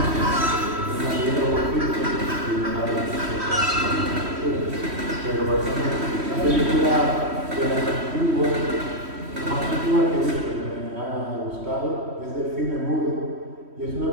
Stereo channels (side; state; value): left; late; 3.1 ms